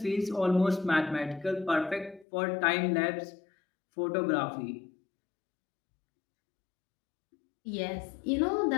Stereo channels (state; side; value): drops out; right; at 2.2 s